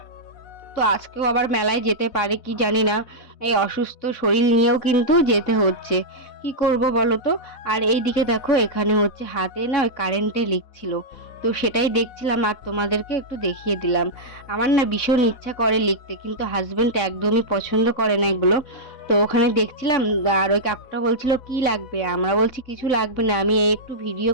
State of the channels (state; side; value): late; right; 4.0 ms